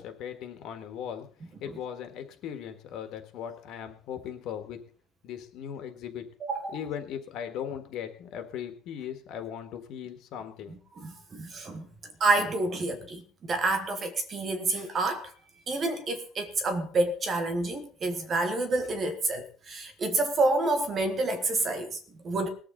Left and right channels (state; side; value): normal; both; correlation 0.68